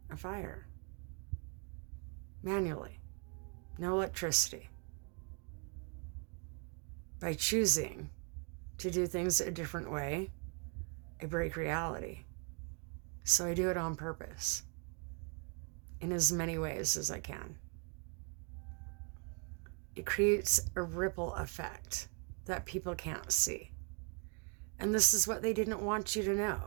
a fire. Manually. No electricity. By choosing to do things a different way, I break reality. So I do it on purpose, in as many ways as I can. It creates a ripple effect that people can't see. And this is what they didn't want you to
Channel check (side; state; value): left; quieter; 37.7 dB